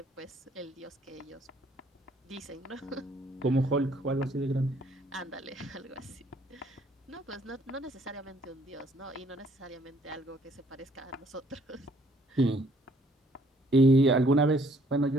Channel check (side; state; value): both; normal; correlation 0.64